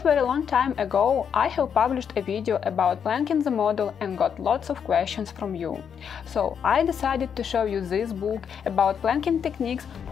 very long time ago I have published a video about planking the model and got lots of questions from you. So I decided to show you this book about planking techniques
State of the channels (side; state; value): right; quieter; 7.5 dB